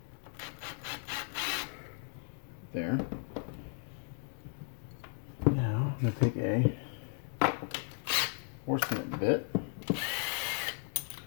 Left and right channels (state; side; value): silent; right; 54 dB below the other